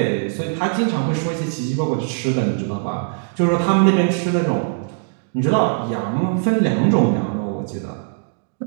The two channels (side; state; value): left; silent; digital silence